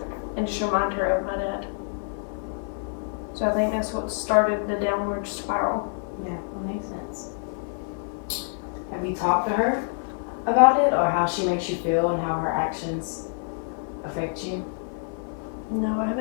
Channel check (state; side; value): silent; right; digital silence